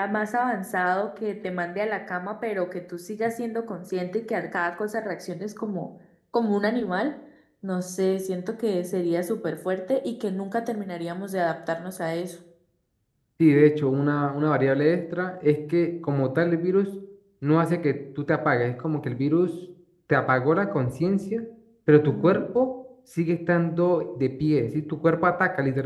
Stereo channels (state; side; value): identical; both; correlation 1.00